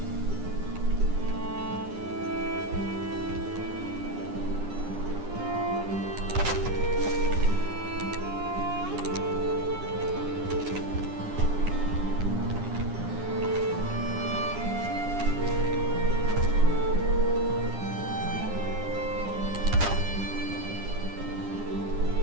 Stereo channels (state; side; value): late; left; 9.9 ms